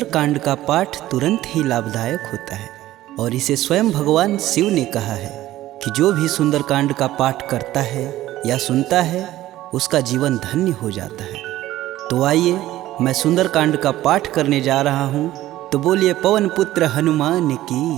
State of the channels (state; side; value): quieter; left; 15.0 dB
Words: का पाठ तुरंत ही लाभदायक होता है और इसे स्वयं भगवान शिव ने कहा है कि जो भी सुंदरकांड का पाठ करता है या सुनता है उसका जीवन धन्य हो जाता है। तो आइए मैं सुंदरकांड का पाठ करने जा रहा हूँ, तो बोलिए पवन पुत्र हनुमान की